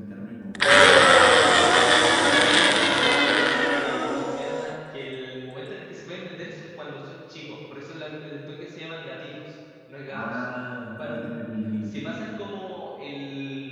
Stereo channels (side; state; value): both; identical; correlation 1.00